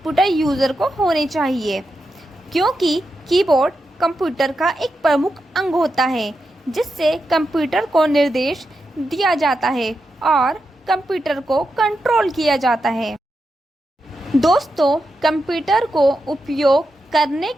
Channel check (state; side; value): normal; both; correlation 0.87